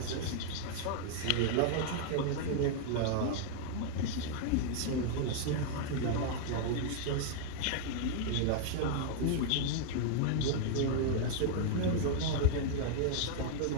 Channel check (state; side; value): different; both; correlation 0.00